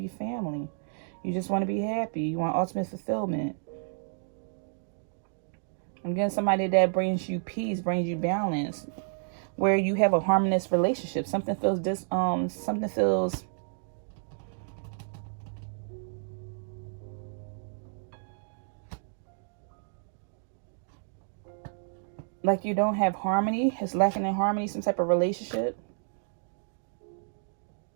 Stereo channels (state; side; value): silent; left; digital silence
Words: family. You just want to be happy. You want ultimate fulfillment. I'm getting somebody that brings you peace, brings you balance, where you have a harmonious relationship. Something feels like you don't have harmony. It's lacking in harmony, some type of relationship.